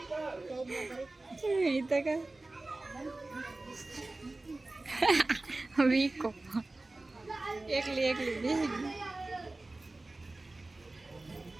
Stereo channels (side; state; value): left; quieter; 3.0 dB